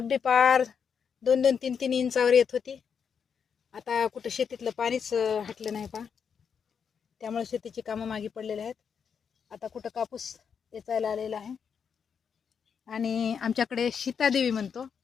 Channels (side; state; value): right; quieter; 6.8 dB